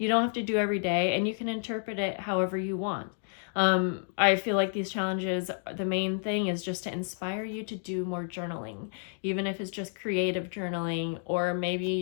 don't have to do every day, and you can interpret it however you want. I feel like these challenges, the main thing is just to inspire you to do more journaling, even if it's just creative journaling, or maybe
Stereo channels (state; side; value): silent; right; digital silence